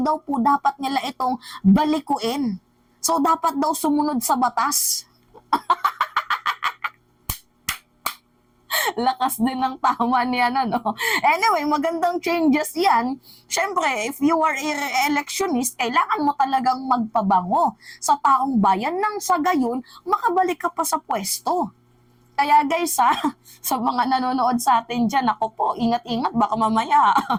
po dapat nila itong balikuin. So dapat daw sumunod sa batas. Lakas din ng tama niya Anyway, magandang changes yan. Siyempre, if you are a electionist, kailangan mo talagang magpabango sa taong bayan nang sa gayon, makabalik ka pa sa pwesto. Kaya guys sa mga nanonood sa atin dyan, ako po, ingat-ingat, baka mamaya,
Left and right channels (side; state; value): both; identical; correlation 1.00